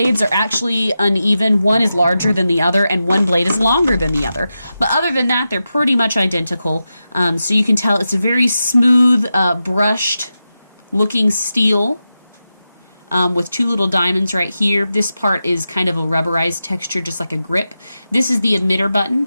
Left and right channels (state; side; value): inverted; both; correlation -0.91